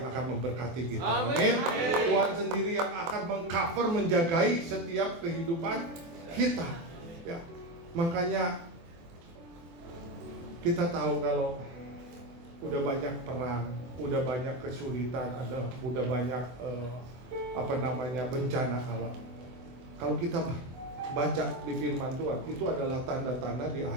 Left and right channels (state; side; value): late; left; 24 ms